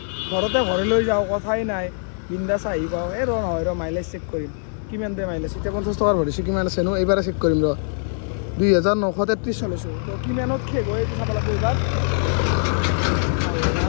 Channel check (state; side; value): silent; right; 64 dB below the other